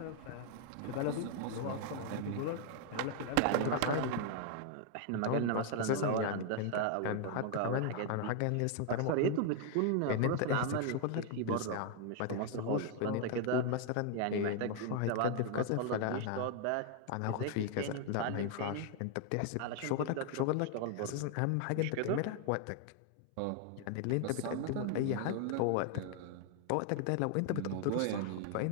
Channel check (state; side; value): different; both; correlation 0.00